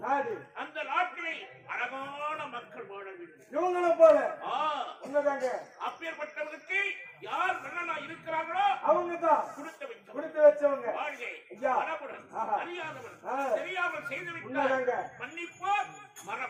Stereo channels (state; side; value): identical; both; correlation 1.00